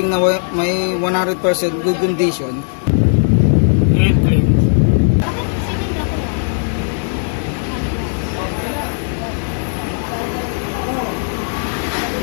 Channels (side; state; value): right; silent; digital silence